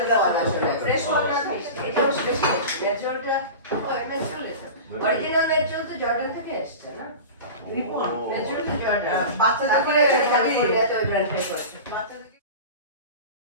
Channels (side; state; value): both; inverted; correlation -0.32